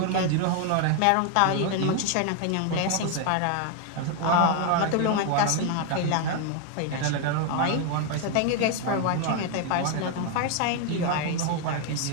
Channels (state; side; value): different; both; correlation 0.01